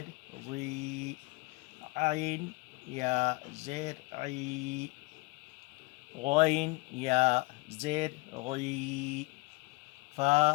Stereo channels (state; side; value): quieter; right; 24.8 dB